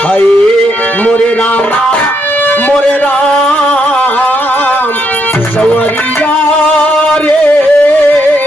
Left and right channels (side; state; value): both; normal; correlation 0.76